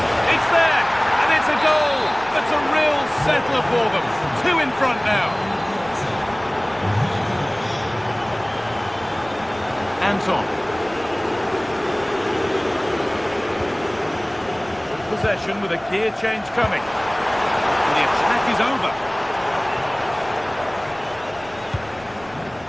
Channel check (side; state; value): left; noise; rumble, 23 dB below the sound